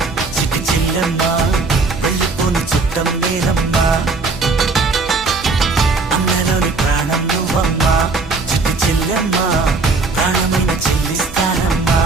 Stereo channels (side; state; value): left; quieter; 3.9 dB